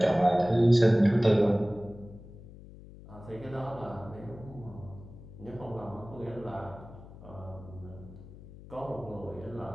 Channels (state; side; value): noise; left; hum, 17 dB below the sound